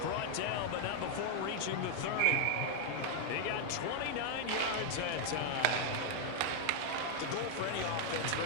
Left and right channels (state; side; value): different; both; correlation 0.00